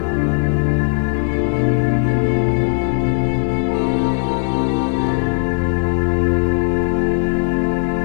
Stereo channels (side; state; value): right; silent; digital silence